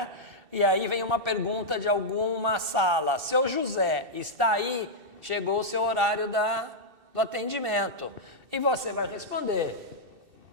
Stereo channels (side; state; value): left; late; 2.7 ms